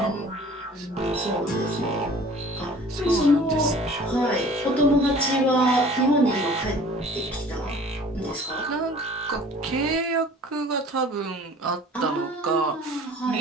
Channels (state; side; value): normal; both; correlation 0.47